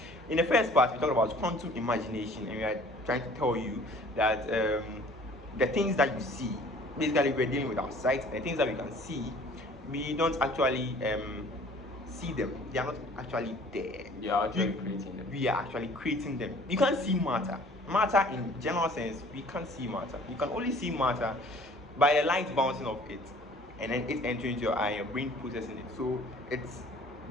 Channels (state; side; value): normal; both; correlation 0.51